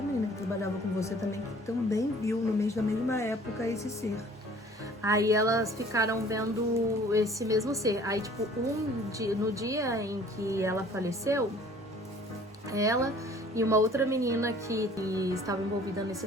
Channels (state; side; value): normal; both; correlation 0.52